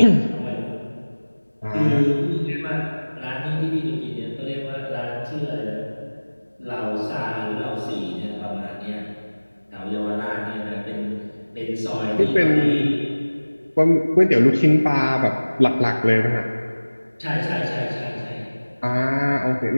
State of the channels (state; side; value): inverted; both; correlation -1.00